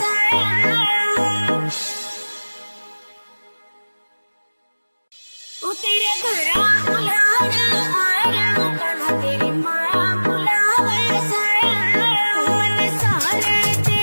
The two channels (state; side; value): inverted; both; correlation -1.00